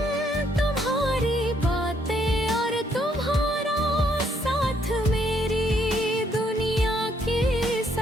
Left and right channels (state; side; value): normal; both; correlation 0.70